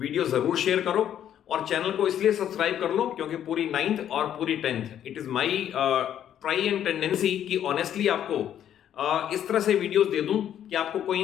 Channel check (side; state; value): right; quieter; 10.3 dB